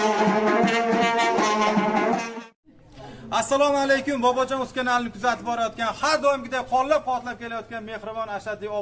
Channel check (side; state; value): both; identical; correlation 1.00